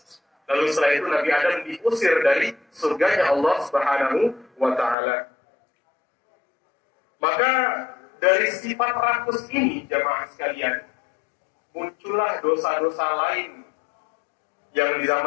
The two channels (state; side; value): drops out; right; at 5.0 s